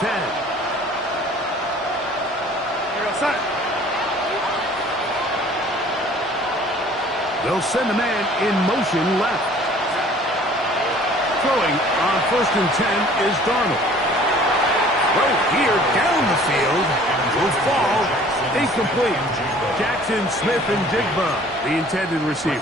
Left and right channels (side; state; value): both; normal; correlation 0.52